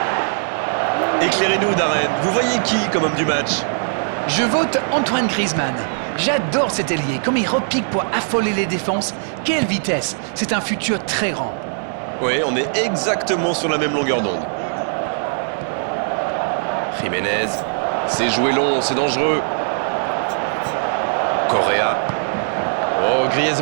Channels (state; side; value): silent; left; 66 dB below the other